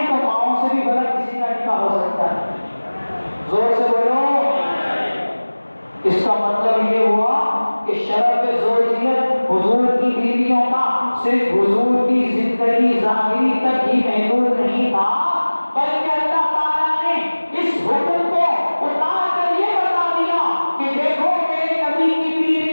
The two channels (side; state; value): both; inverted; correlation -1.00